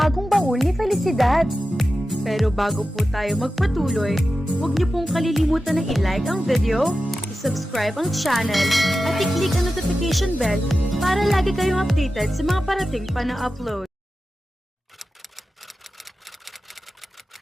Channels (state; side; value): normal; both; correlation 0.93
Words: baul ni Felicidad. Pero bago po tayo magpatuloy, huwag niyo pong kalilimutan na i-like ang video, i-subscribe ang channel, at i-click ang notification bell para lagi kayong updated sa mga parating pa na upload.